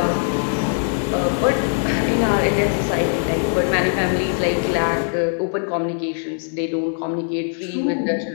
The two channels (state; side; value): silent; right; digital silence